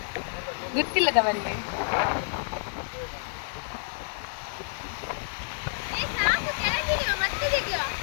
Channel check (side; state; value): right; silent; digital silence